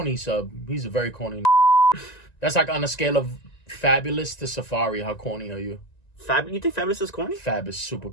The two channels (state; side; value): late; right; 1.9 ms